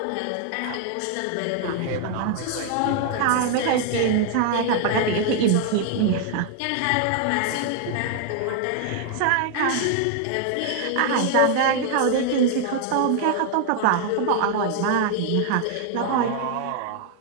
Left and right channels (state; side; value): different; both; correlation 0.00